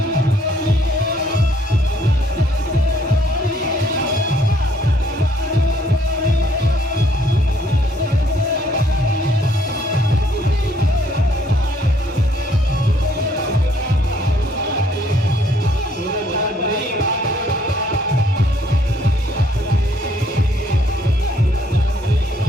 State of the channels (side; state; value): both; normal; correlation 0.65